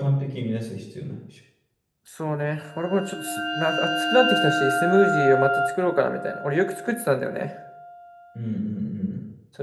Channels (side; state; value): both; identical; correlation 1.00